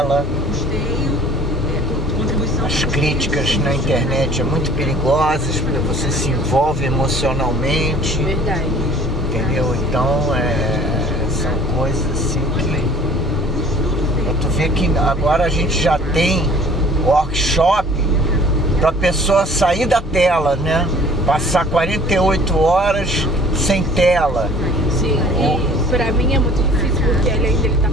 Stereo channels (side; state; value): both; normal; correlation 0.50